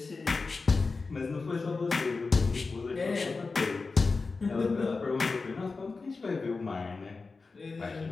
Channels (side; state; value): right; quieter; 4.1 dB